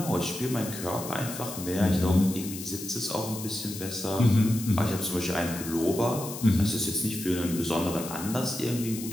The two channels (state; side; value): noise; left; hiss, 10 dB below the sound